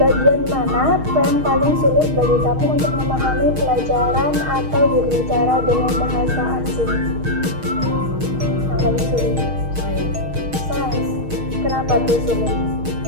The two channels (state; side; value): late; left; 6.4 ms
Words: mana yang paling sulit bagi kamu untuk memahami pelajaran atau berbicara dengan bahasa asing? Yang paling sulit? Sains. Kenapa tuh sulit?